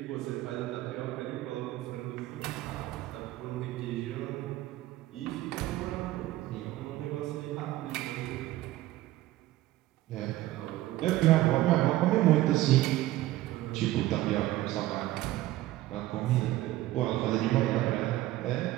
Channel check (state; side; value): quieter; left; 16.0 dB